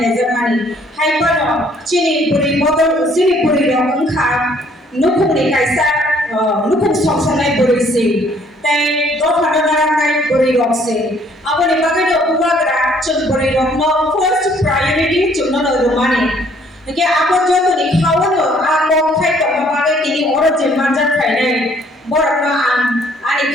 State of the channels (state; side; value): normal; both; correlation 0.62